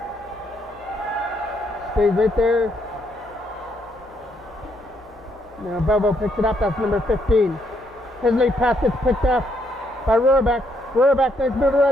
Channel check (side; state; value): both; normal; correlation 0.74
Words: Stays right there. Now Belleville picks it up. That's number 15. His late pass gets picked off by Rurbeck. Rurbeck, nice move